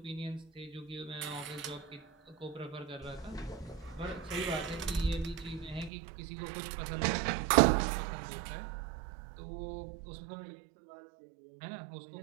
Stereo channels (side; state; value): left; drops out; at 5.9 s